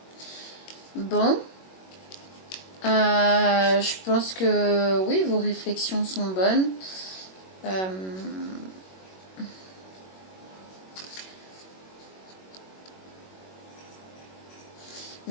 Bon. Je pense que oui, vos réflexions sont bonnes.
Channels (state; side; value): late; right; 21 ms